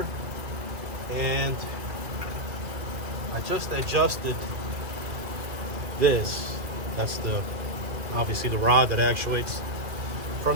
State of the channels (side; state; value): left; late; 2.4 ms